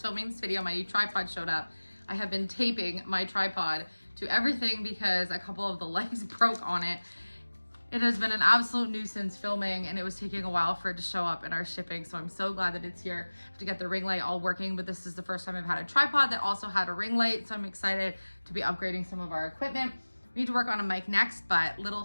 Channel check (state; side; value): inverted; both; correlation -1.00